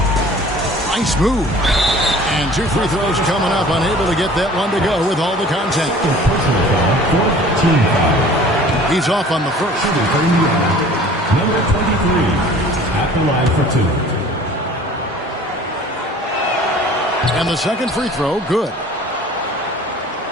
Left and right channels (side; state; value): both; normal; correlation 0.47